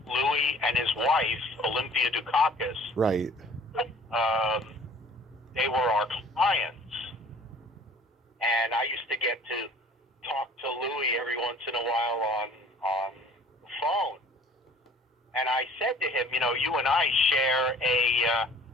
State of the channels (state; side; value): normal; both; correlation 0.51